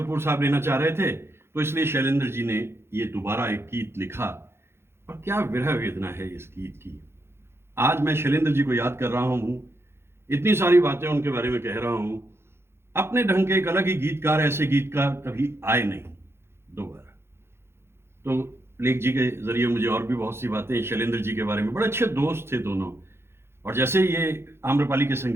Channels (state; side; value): late; left; 0.12 ms